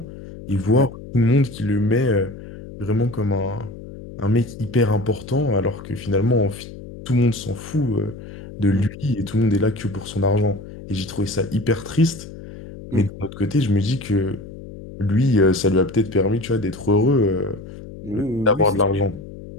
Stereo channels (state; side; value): noise; left; hum, 14 dB below the sound